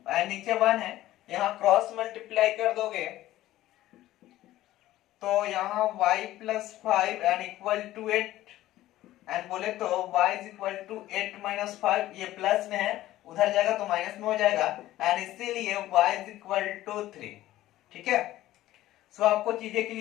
and नीचे 1 है, यहां क्रॉस मल्टीप्लाई कर दोगे तो यहां y plus 5 and equal to 8 and बोले तो y is equal to 8 minus 5, ये प्लस में है उधर जाएगा तो माइनस में हो जाएगा एंड इसीलिए y इज इक्वल टू 3, ठीक है। सो आपको चीजें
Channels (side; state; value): right; quieter; 15.0 dB